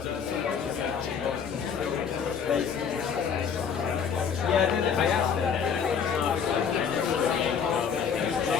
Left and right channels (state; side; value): quieter; right; 6.9 dB